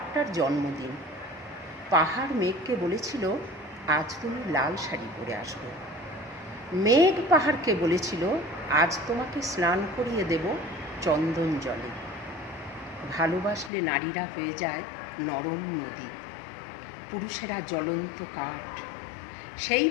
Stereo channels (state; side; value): drops out; right; at 13.7 s